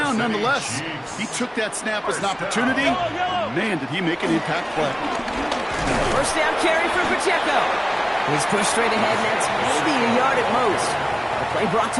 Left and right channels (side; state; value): both; identical; correlation 1.00